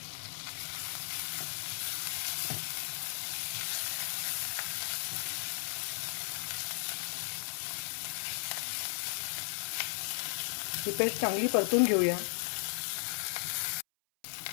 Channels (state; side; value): silent; right; 54 dB below the other